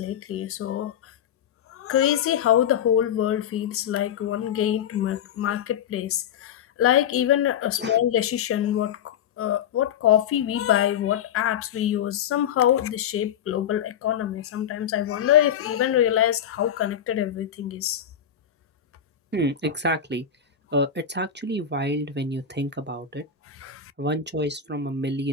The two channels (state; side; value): quieter; right; 8.6 dB